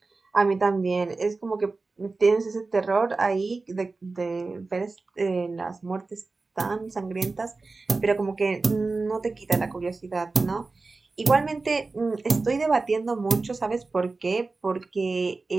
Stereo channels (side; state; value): left; quieter; 3.7 dB